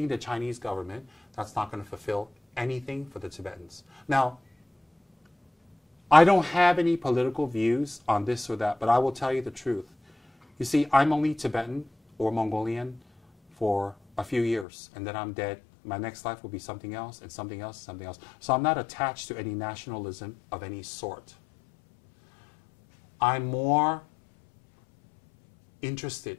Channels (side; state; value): right; drops out; at 14.7 s